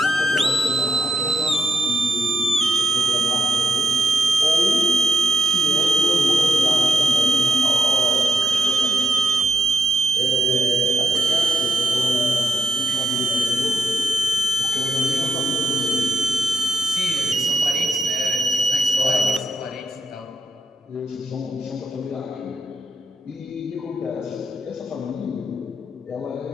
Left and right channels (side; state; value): both; normal; correlation 0.81